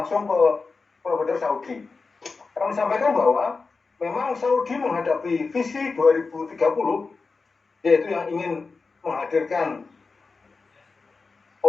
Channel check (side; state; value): right; quieter; 4.3 dB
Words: ke provider Saudi. Kami sampaikan bahwa memang Saudi menghadapi visi 2030, yaitu yang ingin menghadirkan